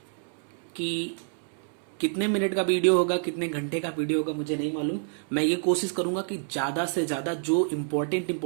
कि कितने मिनट का वीडियो होगा, कितने घंटे का वीडियो होगा मुझे नहीं मालूम। मैं ये कोशिश करूंगा कि ज़्यादा से ज़्यादा जो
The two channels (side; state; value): left; silent; 59 dB below the other